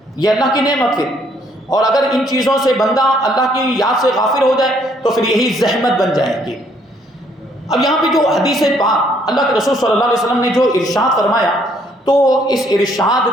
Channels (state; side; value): normal; both; correlation 0.66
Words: یہ اللہ کی نعمت ہے۔ اور اگر ان چیزوں سے بندہ اللہ کی یاد سے غافل ہو جائے تو پھر یہی زحمت بن جائے گی۔ اب یہاں پہ جو حدیث پاک اللہ کے رسول صلی اللہ علیہ وسلم نے جو ارشاد فرمایا، تو اس ارشاد